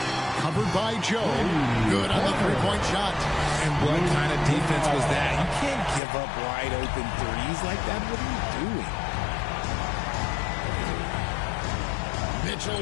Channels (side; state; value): right; drops out; at 6.0 s